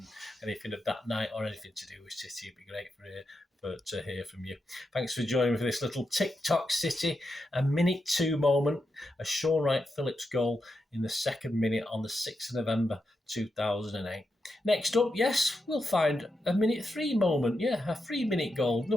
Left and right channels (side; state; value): both; normal; correlation 0.86